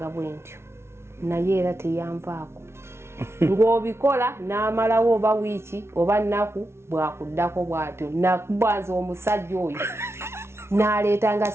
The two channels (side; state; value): left; late; 0.12 ms